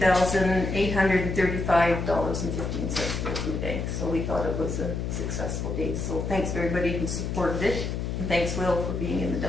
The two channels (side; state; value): left; noise; hum, 3 dB below the sound